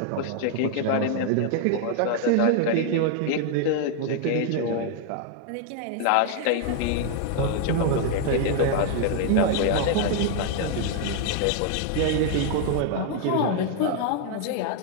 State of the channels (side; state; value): both; different; correlation 0.00